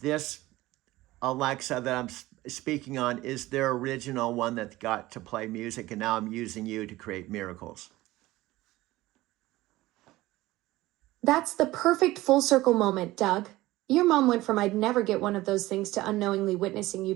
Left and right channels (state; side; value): quieter; left; 17.8 dB